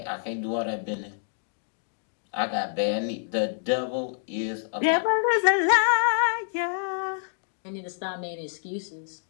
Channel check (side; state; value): right; silent; digital silence